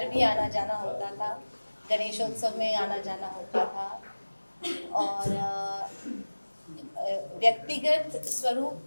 भी आना जाना होता था, गणेशोत्सव में आना जाना होता था। और व्यक्तिगत स्वरूप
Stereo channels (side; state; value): both; inverted; correlation -1.00